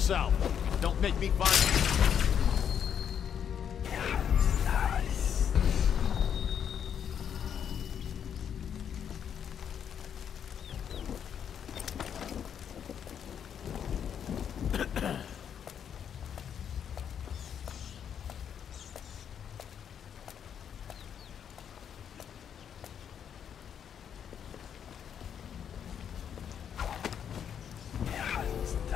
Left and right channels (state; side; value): quieter; right; 8.4 dB